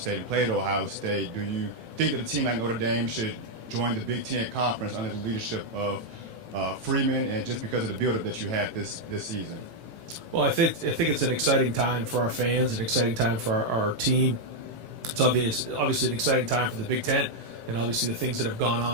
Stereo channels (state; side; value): late; left; 18 ms